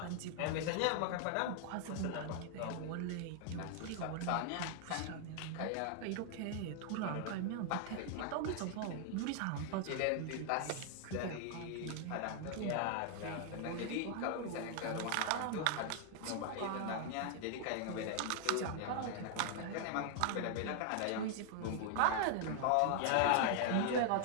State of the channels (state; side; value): different; both; correlation 0.00